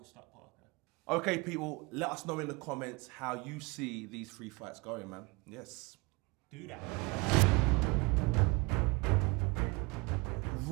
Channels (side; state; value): left; quieter; 26.6 dB